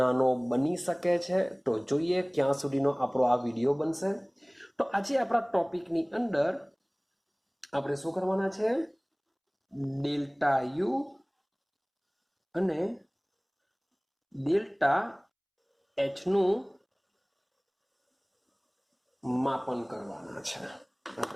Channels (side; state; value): both; identical; correlation 1.00